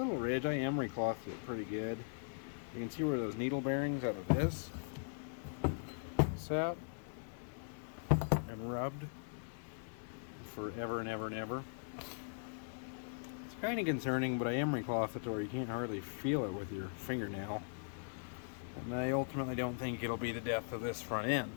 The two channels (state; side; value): silent; right; digital silence